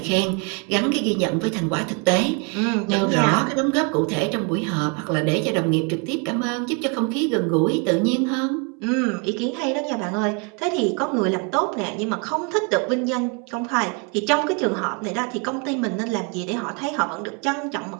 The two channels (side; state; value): left; quieter; 33.8 dB